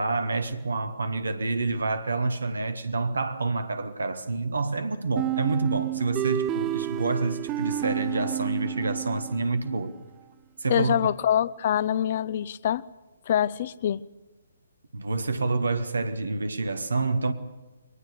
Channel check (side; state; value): both; inverted; correlation -0.65